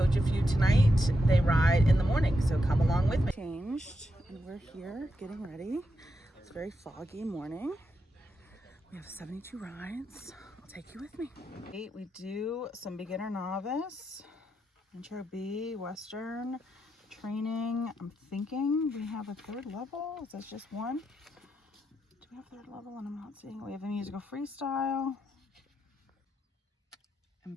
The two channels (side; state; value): both; normal; correlation 0.84